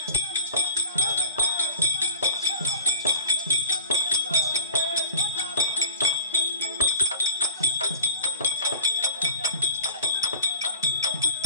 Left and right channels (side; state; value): both; inverted; correlation -0.42